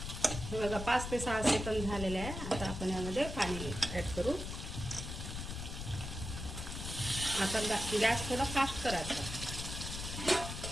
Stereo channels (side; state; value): left; noise; rumble, 6 dB below the sound